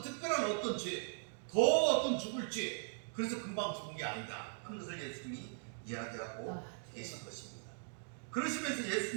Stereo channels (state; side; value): silent; left; digital silence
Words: 특별한 어떤 죄, 더 어떤 죽을 죄, 그래서 금방 죽은 게 아니다 하는 것을 예수님이 이야기하고 계신 것입니다. 그러시면서